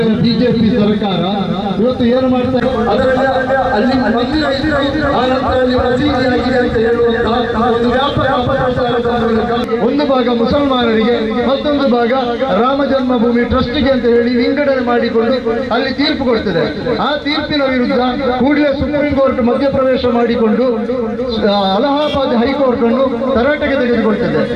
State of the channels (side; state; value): both; identical; correlation 1.00